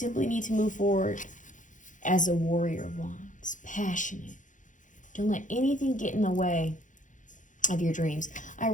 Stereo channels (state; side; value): late; right; 0.37 ms